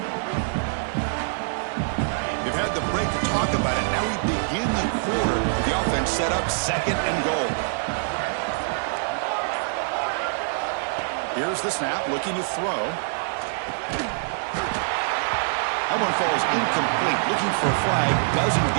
They've had the break to talk about it. Now we begin the quarter with the offense set up 2nd and goal. Here's the snap, looking to throw. That one falls incomplete. Looking for a flag, doesn't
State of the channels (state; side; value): silent; left; digital silence